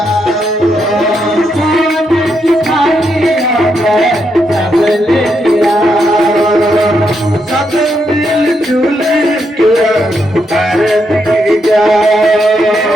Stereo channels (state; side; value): normal; both; correlation 0.80